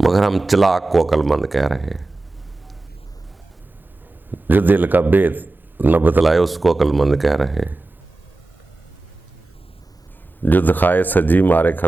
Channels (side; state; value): left; quieter; 3.0 dB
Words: मगर हम चलाक को अक्लमंद कह रहे हैं। जो दिल का भेद न बतलाए उसको अक्लमंद कह रहे हैं। जो दिखाए सजी मारे